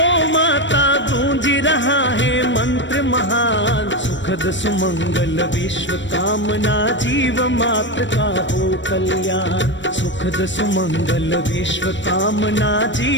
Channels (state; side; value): late; right; 0.54 ms